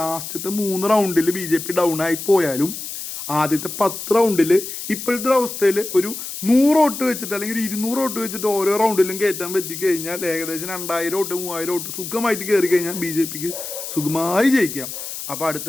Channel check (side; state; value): left; noise; hiss, 8 dB below the sound